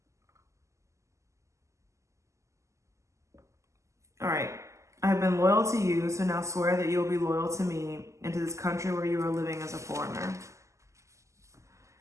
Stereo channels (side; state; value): left; late; 0.15 ms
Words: All right. "I have been loyal to you, so now swear that you will be loyal to me and to this country where you are living as a foreigner."